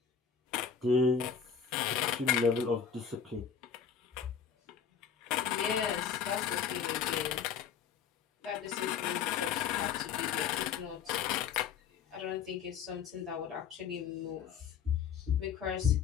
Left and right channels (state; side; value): quieter; right; 7.1 dB